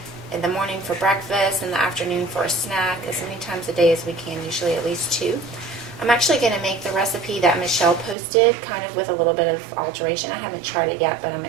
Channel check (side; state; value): left; drops out; at 8.2 s